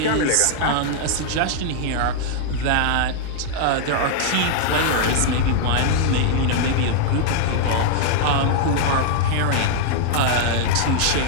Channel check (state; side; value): different; both; correlation 0.00